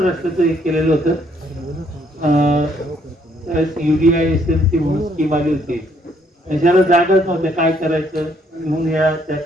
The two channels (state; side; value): normal; both; correlation 0.68